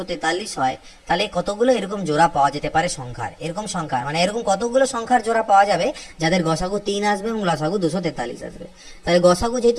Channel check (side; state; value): both; identical; correlation 1.00